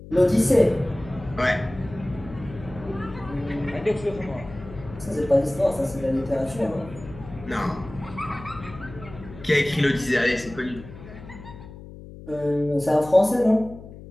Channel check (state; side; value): noise; left; hum, 15 dB below the sound